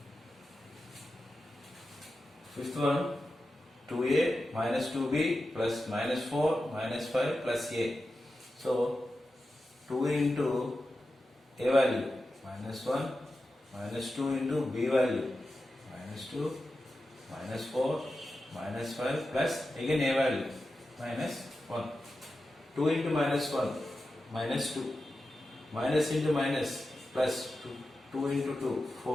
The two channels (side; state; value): both; normal; correlation 0.91